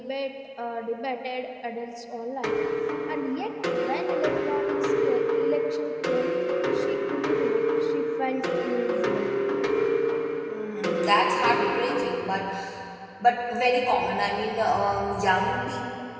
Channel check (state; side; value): identical; both; correlation 1.00